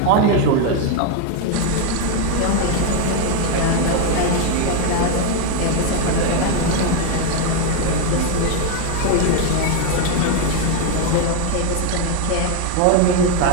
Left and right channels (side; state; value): both; different; correlation 0.01